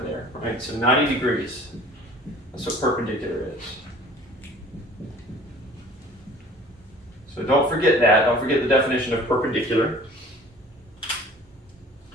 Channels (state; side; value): normal; both; correlation 0.48